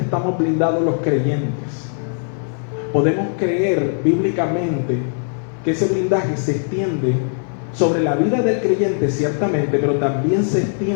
blindados los creyentes, podemos creer bíblicamente que ese blindaje se extiende sobre la vida del creyente, ciertamente, pero también se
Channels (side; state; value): right; silent; digital silence